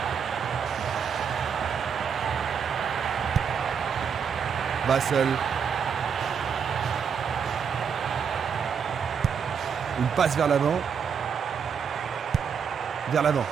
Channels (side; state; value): left; quieter; 6.9 dB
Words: Vassell. Une passe vers l'avant. Vers l'avant.